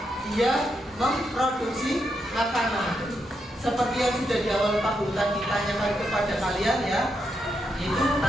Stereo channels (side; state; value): both; normal; correlation 0.82